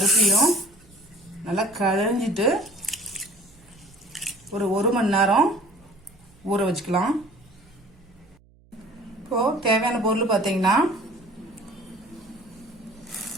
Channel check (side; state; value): right; noise; hum, 29 dB below the sound